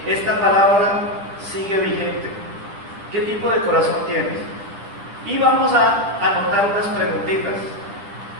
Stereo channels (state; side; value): late; left; 10 ms